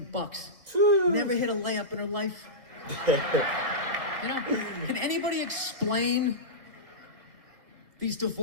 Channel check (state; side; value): late; left; 2.0 ms